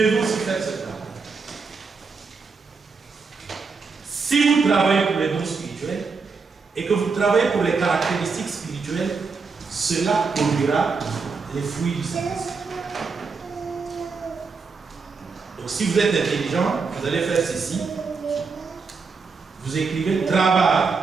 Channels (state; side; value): quieter; left; 4.8 dB